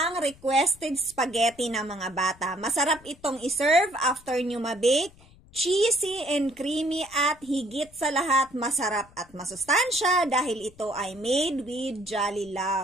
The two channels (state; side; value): noise; left; rumble, 25 dB below the sound